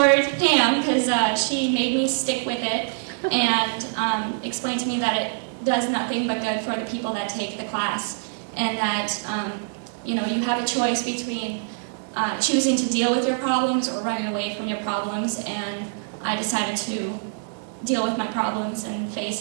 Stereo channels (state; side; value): silent; left; digital silence